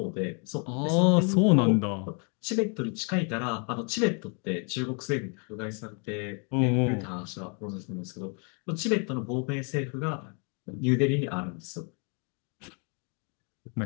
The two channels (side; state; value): right; quieter; 37.4 dB